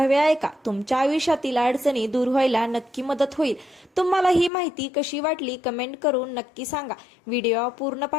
ऐका। तुमच्या आयुष्यातील अडचणी दूर व्हायला नक्की मदत होईल। तुम्हाला ही माहिती कशी वाटली कमेंट करून नक्की सांगा। व्हिडिओ पूर्ण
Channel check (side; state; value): right; drops out; at 4.5 s